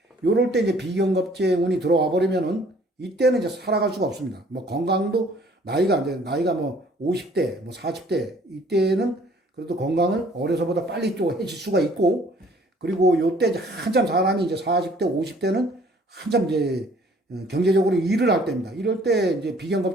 요럴 때 이제 비경겁제 운이 들어와 버리면은 이때는 이제 살아갈 수가 없습니다. 뭐 건강도 나이가 뭐 50대, 뭐 40대, 이때는 그래도 건강을 어려서보다 빨리 또 해칠 수가 있고, 그리고 요때 이제 한참 사람이 이제 40대, 50대는 한참 이제 경제적으로 일을 할 때입니다. 이럴 때 이제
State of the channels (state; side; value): normal; both; correlation 0.57